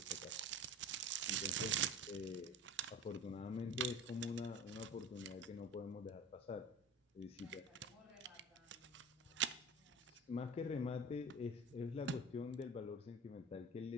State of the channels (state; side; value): normal; both; correlation 0.34